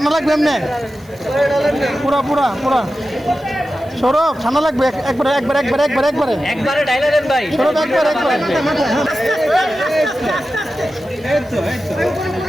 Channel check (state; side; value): noise; right; hiss, 28 dB below the sound